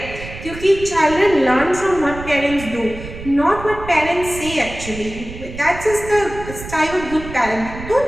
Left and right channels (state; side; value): noise; right; rumble, 12 dB below the sound